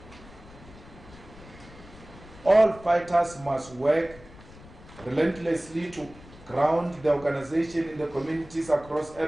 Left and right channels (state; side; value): noise; left; rumble, 20 dB below the sound